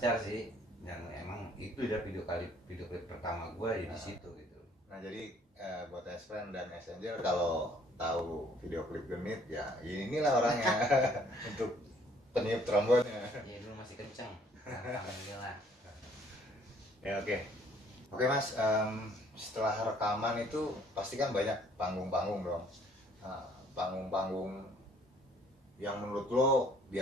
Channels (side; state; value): both; normal; correlation 0.60